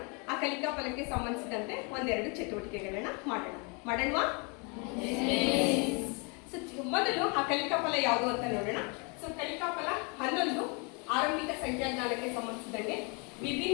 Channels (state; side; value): quieter; right; 32.8 dB